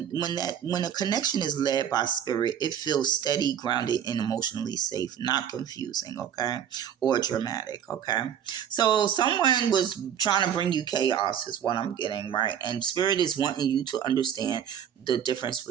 a connection is led by spirit, it feels steady, grounded, and emotionally safe, not confusing. Okay, or dramatic. Okay, so someone was trying to bring you chaos, is what I'm getting, right? And spirit is wanting you to understand the difference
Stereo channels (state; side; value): quieter; left; 9.1 dB